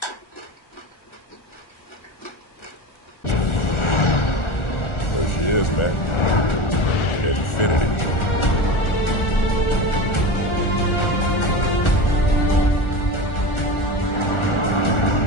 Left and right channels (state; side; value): late; right; 1.4 ms